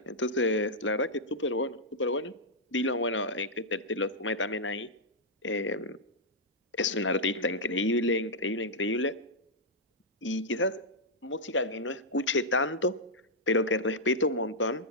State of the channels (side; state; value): both; normal; correlation -0.07